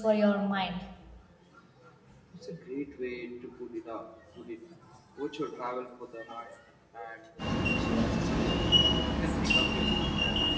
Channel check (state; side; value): identical; both; correlation 1.00